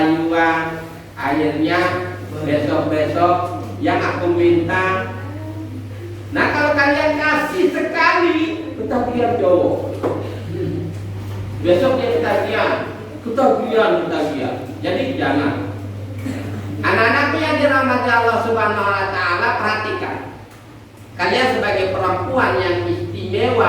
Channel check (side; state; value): both; identical; correlation 1.00